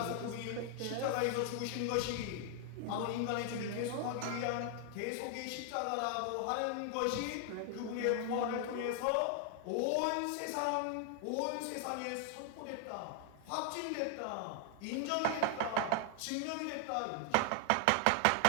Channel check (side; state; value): both; different; correlation 0.00